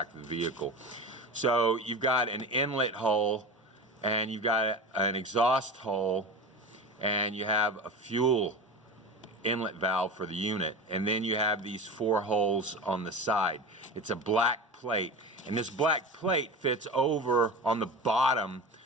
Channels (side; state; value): both; normal; correlation 0.28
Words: of the vehicle. So you've got an inlet hole, and you've got an exhaust hole, and you have a fuel inlet valve for the unit, and then you have these 4 holes on the side. It's a black plate, and this black plate fits over on the bottom